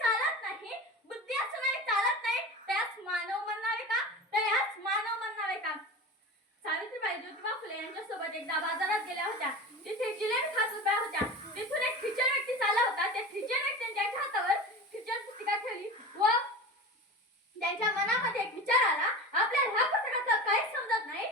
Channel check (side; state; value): both; normal; correlation 0.31